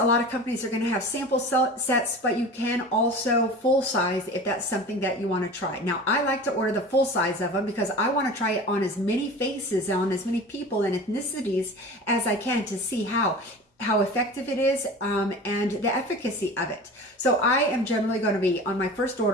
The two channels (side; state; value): both; normal; correlation 0.36